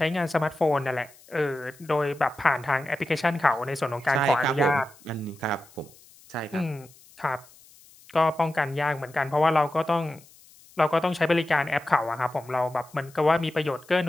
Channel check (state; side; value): noise; left; hiss, 25 dB below the sound